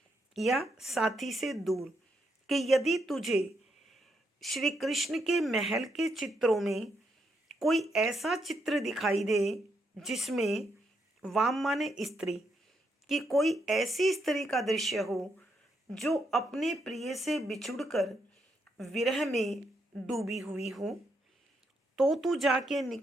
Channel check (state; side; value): normal; both; correlation 0.78